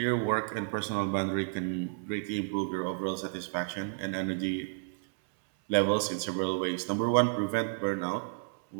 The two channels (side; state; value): left; silent; 57 dB below the other